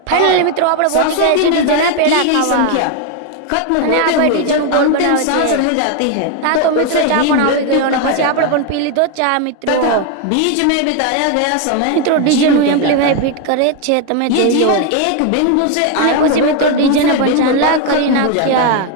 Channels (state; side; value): different; both; correlation 0.01